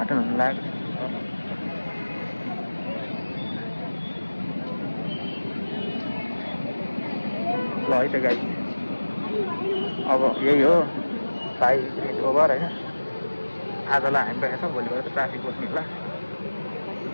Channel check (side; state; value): both; inverted; correlation -1.00